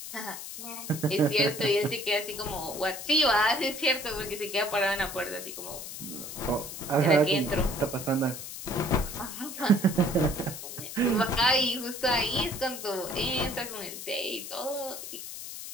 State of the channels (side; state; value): left; noise; hiss, 9 dB below the sound